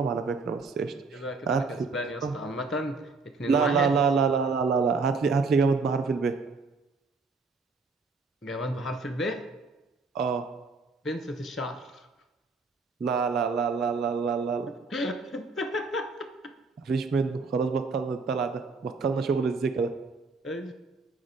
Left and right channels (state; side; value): quieter; left; 4.1 dB